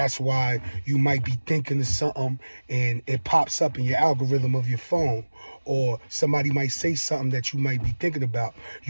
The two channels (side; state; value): both; inverted; correlation -1.00